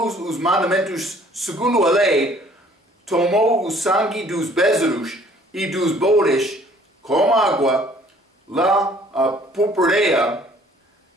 os mandamentos segundo a lei, tomou o sangue dos bezerros e dos bodes com água, lá a purpureia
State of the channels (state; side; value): normal; both; correlation 0.57